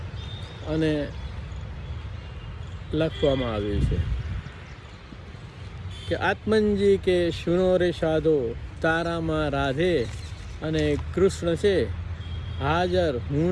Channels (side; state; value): both; identical; correlation 1.00